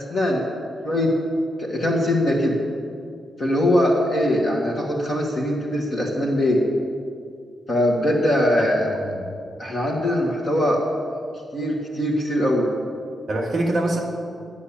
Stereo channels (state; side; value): normal; both; correlation 0.81